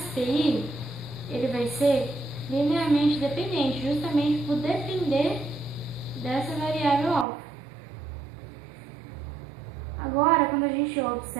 ele vai ser linearmente dependente, justamente por depender dessa variável alfa. Agora, quando a gente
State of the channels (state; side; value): drops out; left; at 7.2 s